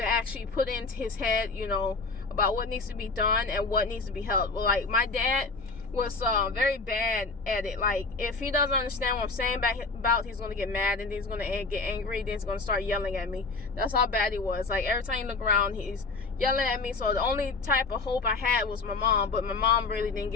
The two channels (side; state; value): right; quieter; 3.9 dB